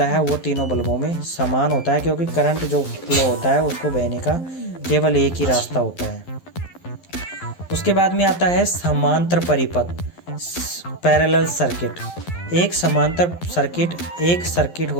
है वो तीनों बल्बों में समान होता है, क्योंकि करंट जो फ्लो होता है उसको बहने का केवल एक ही रास्ता होता है। उसके बाद में आता है समांतर परिपथ, पैरेलल सर्किट। एक समांतर सर्किट एक सर्किट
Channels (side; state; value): right; late; 11 ms